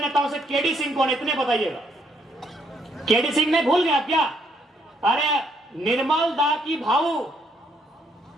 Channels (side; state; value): both; normal; correlation 0.71